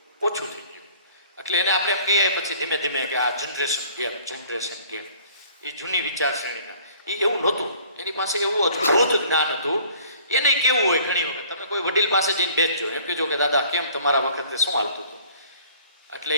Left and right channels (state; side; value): inverted; both; correlation -0.52